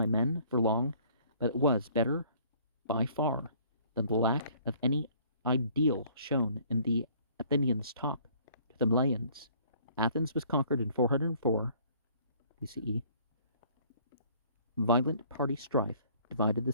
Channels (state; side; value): inverted; both; correlation -0.57